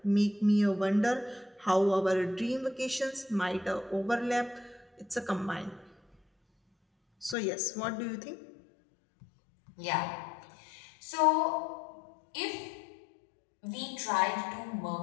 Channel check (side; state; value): right; drops out; at 7.4 s